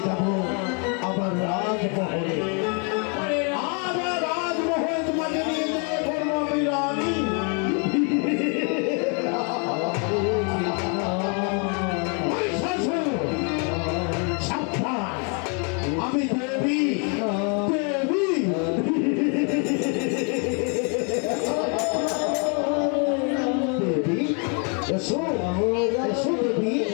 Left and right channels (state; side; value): quieter; right; 37.5 dB